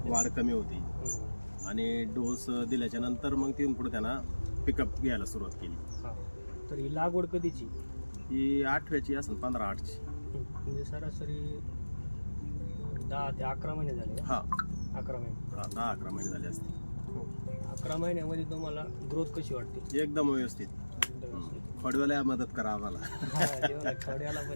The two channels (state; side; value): inverted; both; correlation -1.00